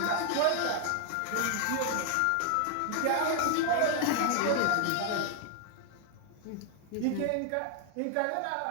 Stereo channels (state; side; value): different; both; correlation 0.00